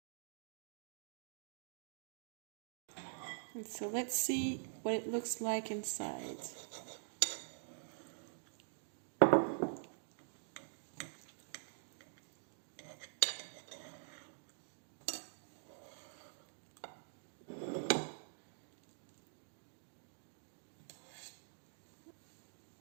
And so let's see what it looks like inside.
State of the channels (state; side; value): silent; left; digital silence